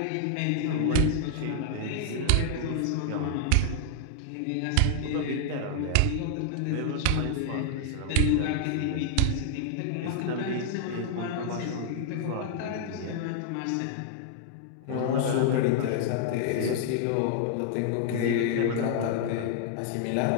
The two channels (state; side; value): different; both; correlation -0.01